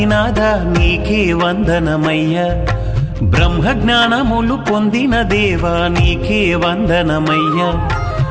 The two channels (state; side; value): identical; both; correlation 1.00